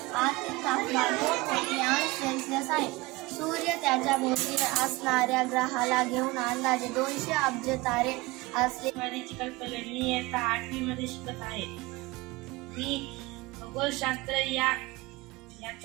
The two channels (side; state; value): left; quieter; 21.6 dB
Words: आतील तापमान 2 कोटी अंश सेल्सिअस आहे। सूर्य त्याच्या भोवती असणाऱ्या ग्रहाला घेऊन अंदाजे 200 अब्ज तारे असले। मी आता 8वी मध्ये शिकत आहे। मी खगोलशास्त्र